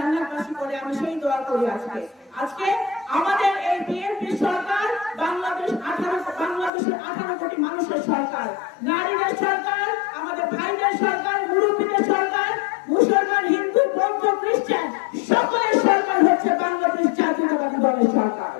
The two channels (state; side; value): drops out; right; at 6.7 s